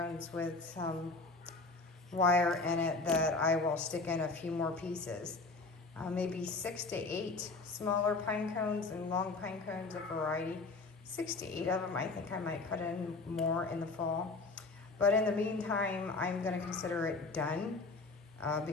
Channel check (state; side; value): quieter; right; 3.6 dB